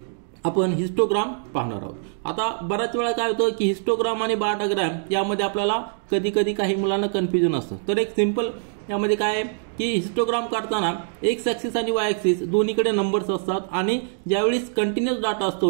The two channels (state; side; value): silent; left; digital silence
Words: आपण हिस्टोग्राम पाहणार आहोत. आता बऱ्याच वेळा काय होतं की हिस्टोग्राम आणि बार डायग्राम यामध्ये आपल्याला कधी कधी काही मुलांना कन्फ्युजन असतं. तर एक सिंपल यामध्ये काय आहे की हिस्टोग्राम काढताना एक्स ऍक्सिस आणि वाय ऍक्सिस दोन्हीकडे नंबर्स असतात आणि ज्यावेळी कंटिन्युअस डाटा